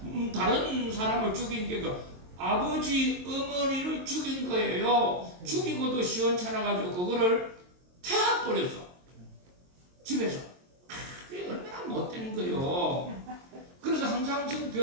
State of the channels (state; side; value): late; left; 22 ms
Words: 다른 사람을 죽인 게 아버지 어머니를 죽인 거예요. 죽이고도 시원찮아가지고 그거를 태워버렸어. 집에서. 그게 얼마나 못된 거요. 그래서 황상승